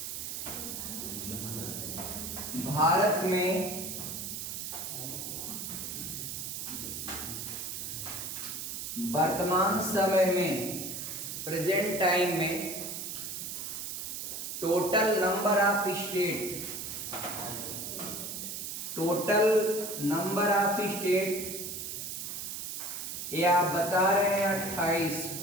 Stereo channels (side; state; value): right; noise; hiss, 5 dB below the sound